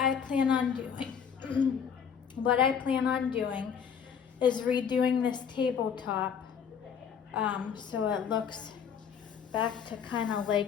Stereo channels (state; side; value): quieter; right; 7.3 dB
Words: plan on doing, is redoing this tabletop so it looks back to kind of